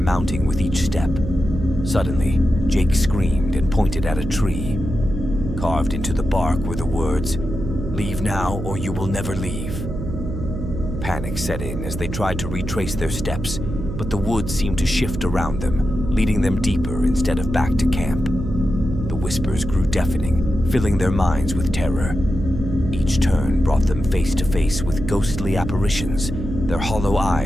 with each step. Suddenly, Jake screamed and pointed at a tree. Carved into the bark were the words, "Leave now or you will never leave." Panic set in as they tried to retrace their steps, but the woods seemed to shift around them, leading them deeper instead of back to camp. The whispers grew deafening, filling their minds with terror. Each turn brought them face to face with ghostly apparitions, their hollow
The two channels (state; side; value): noise; right; hum, 6 dB below the sound